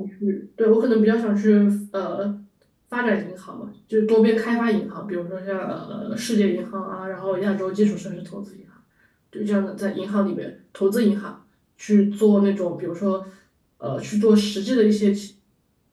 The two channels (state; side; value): identical; both; correlation 1.00